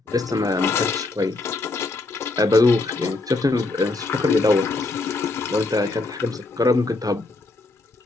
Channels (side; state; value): right; quieter; 3.3 dB